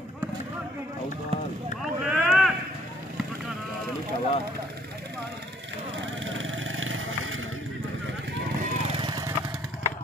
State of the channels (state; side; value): normal; both; correlation 0.63